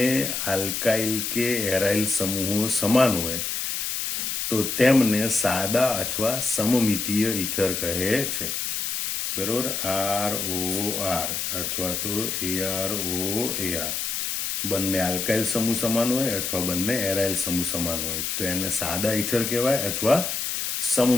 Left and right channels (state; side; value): noise; left; hiss, 2 dB below the sound